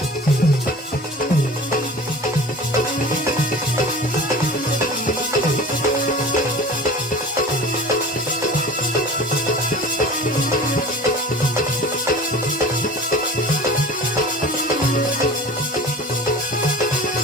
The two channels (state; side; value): normal; both; correlation 0.39